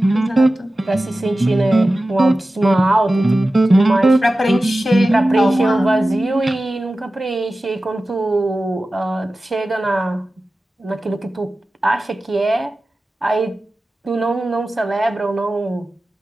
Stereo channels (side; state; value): both; normal; correlation 0.95